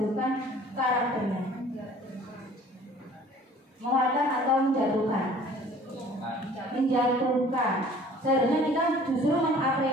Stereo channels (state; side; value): normal; both; correlation 0.51